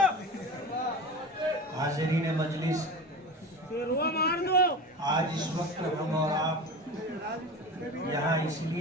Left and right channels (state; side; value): normal; both; correlation 0.30